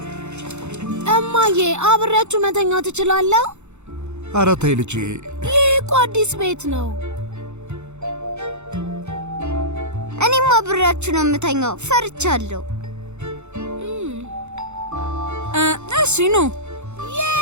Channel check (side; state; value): left; late; 0.82 ms